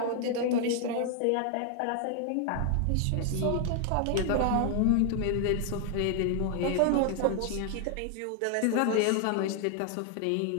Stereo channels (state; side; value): different; both; correlation 0.00